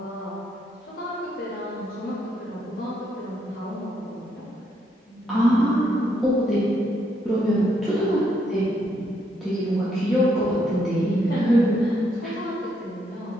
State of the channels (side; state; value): both; normal; correlation 0.75